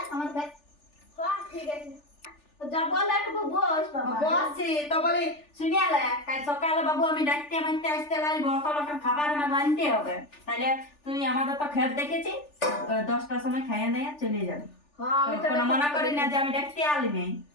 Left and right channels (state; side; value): late; right; 3.4 ms